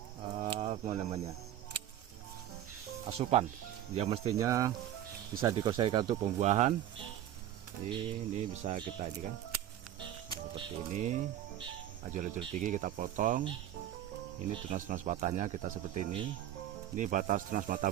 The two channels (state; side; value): quieter; left; 11.7 dB